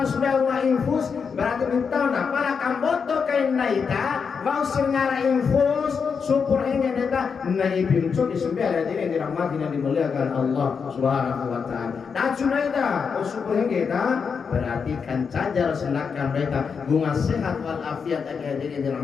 wa infus berarti minta na para kamboto kain naita mau sengara infus syukur hingga data naibin cok di sembilan ini dirahmati dan dimuliakan Allah Subhanahu wa taala. Dacu naita syukur hingga data berarti kan cajar selakan mereka bunga sehat walafiat agar diri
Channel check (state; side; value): quieter; right; 6.0 dB